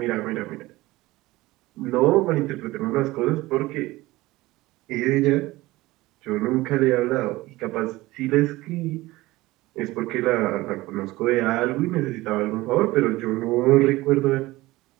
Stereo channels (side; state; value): left; quieter; 19.2 dB